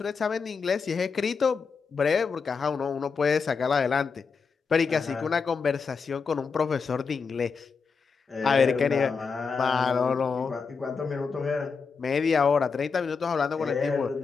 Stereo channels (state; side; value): quieter; right; 5.3 dB